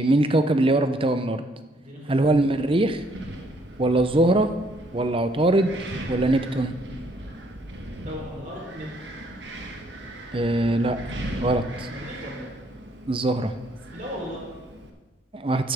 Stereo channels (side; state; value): both; normal; correlation 0.67